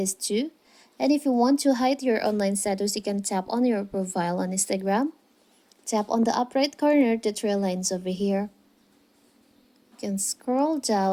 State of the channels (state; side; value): identical; both; correlation 1.00